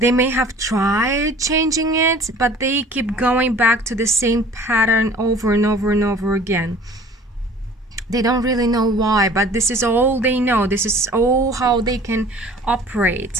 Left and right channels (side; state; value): both; normal; correlation 0.48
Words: may have tried changing it, but they keep going back to the same pattern over and over and over again. They don't really know why, but this is all they know. This is all how they can